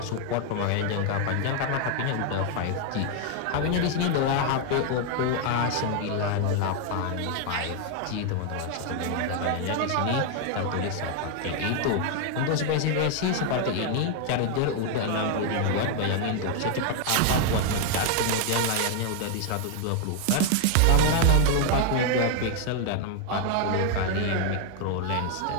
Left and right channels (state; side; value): different; both; correlation 0.00